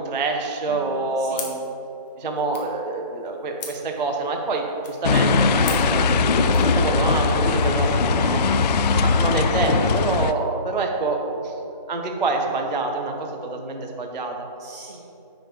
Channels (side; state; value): both; inverted; correlation -0.31